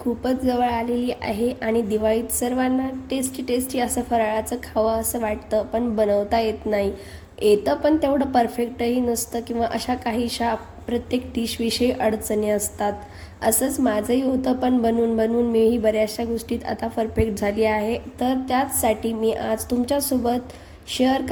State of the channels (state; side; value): identical; both; correlation 1.00